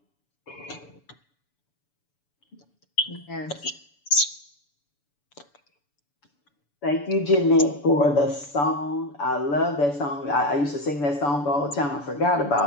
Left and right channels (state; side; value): late; right; 7.0 ms